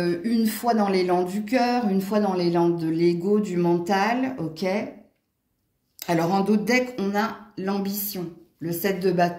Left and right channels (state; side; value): identical; both; correlation 1.00